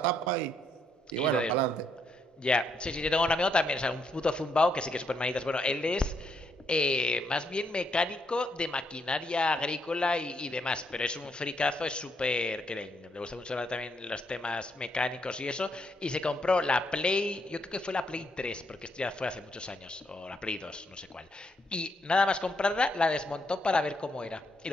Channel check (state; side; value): normal; both; correlation 0.76